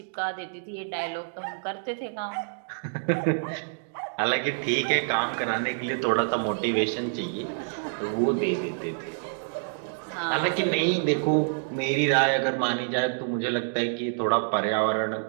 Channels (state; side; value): silent; left; digital silence